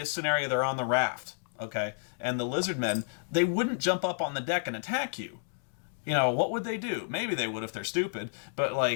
scenario they're on the raft, okay? And the lizard men, they wouldn't jump up on the deck and attack you. You know, what would they do? Maybe they would if they're stupid, but,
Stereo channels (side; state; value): right; silent; digital silence